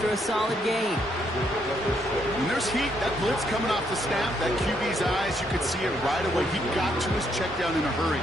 a solid gain. When there's heat, that blitz coming off the snap, that QB's eyes, you could see it right away. He got to his check down in a hurry.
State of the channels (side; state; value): both; normal; correlation 0.74